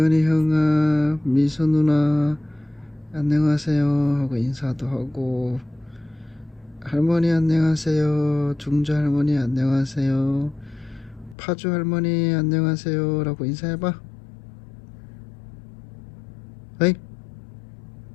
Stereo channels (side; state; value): right; drops out; at 11.4 s